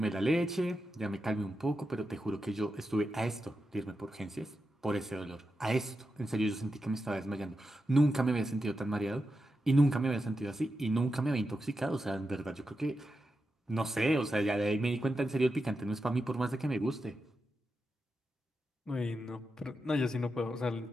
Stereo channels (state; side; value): normal; both; correlation 0.88